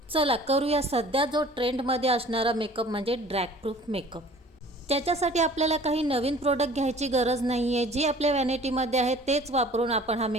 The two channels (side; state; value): both; normal; correlation 0.48